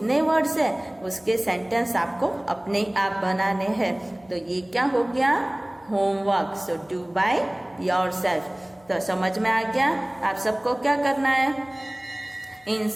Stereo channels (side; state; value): left; noise; hum, 29 dB below the sound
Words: words है उसके sentence आपको अपने आप बनाने हैं। तो ये क्या हो गया? Homework. So do by yourself. तो समझ में आ गया? आप सबको क्या करना है? इन